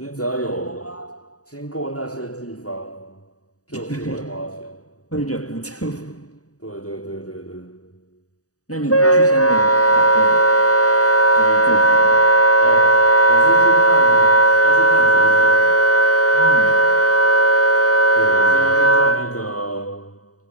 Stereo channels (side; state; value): right; late; 0.66 ms